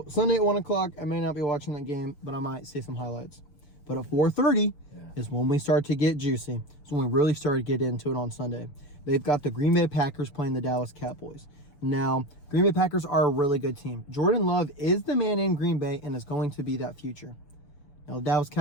Sunday at 1 o'clock, I may not be watching that game, but I might see some highlights. But at 4:30 is when we start to get juicy. It's when we really start to get into it on Sunday. They've got the Green Bay Packers playing the Dallas Cowboys. Now, Green Bay Packers are a really good team. Jordan Love is the man in Green Bay and is going to be that future. Now, the Dallas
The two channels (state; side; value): late; right; 6.8 ms